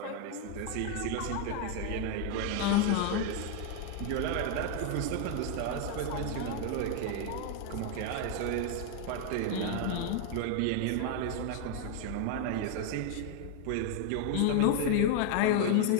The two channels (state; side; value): different; both; correlation 0.01